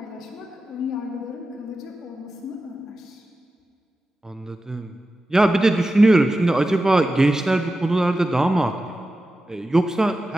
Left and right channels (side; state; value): both; normal; correlation 0.93